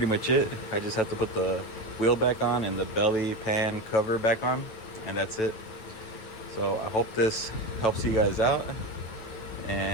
much it. I just have to put the wheel back on and the belly pan cover back on, and that's it. So I hope this helps you guys out,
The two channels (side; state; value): right; late; 9.3 ms